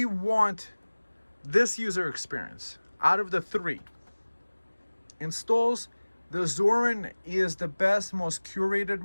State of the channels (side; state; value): both; inverted; correlation -1.00